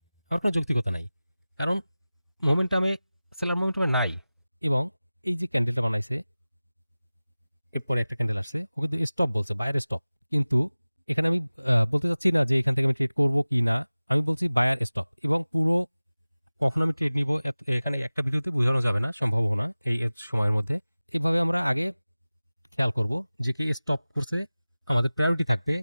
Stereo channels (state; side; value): inverted; both; correlation -0.98